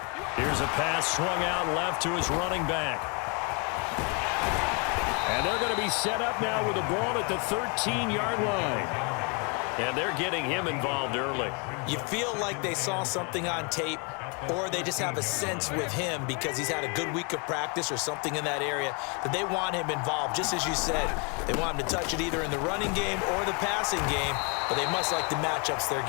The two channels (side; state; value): right; quieter; 34.2 dB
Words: Here's a pass swung out left to his running back. And they're going to be set up now with the ball at the 13-yard line. And they're getting him involved early. You feel like they saw something on tape, or they just have a sense with him because he's had a good week of practice or something in that area that they want him involved. Just as you said, they want him to touch it either in the running game or the passing game, but they must like the matchups they're